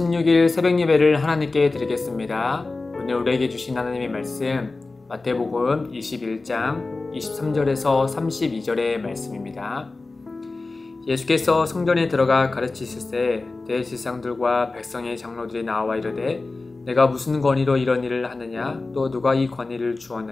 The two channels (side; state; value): right; quieter; 3.5 dB